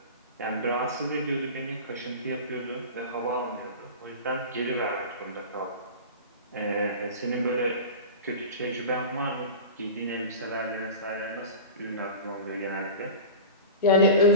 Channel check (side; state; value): both; inverted; correlation -0.32